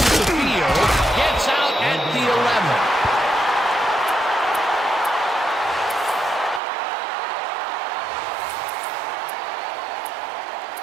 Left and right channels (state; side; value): drops out; left; at 6.6 s